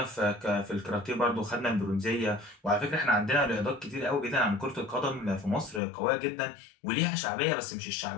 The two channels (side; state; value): right; drops out; at 5.8 s